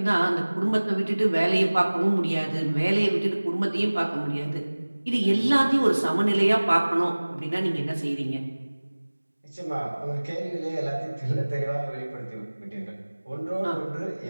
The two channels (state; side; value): inverted; both; correlation -1.00